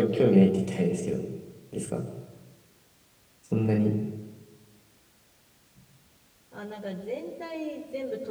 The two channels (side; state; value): both; identical; correlation 1.00